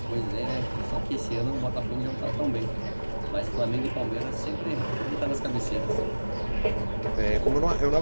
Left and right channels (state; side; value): inverted; both; correlation -1.00